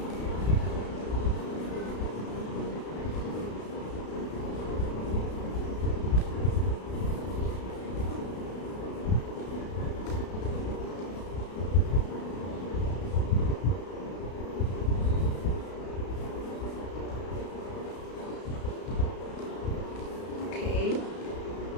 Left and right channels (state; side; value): late; right; 33 ms